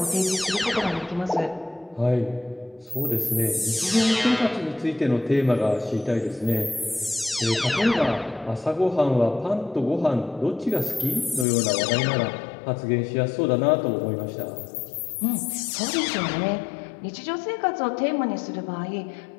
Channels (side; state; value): right; drops out; at 11.5 s